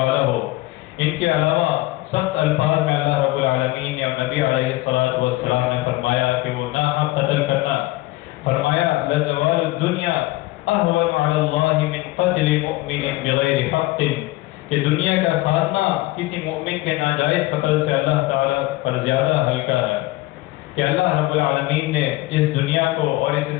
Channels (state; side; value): quieter; right; 19.3 dB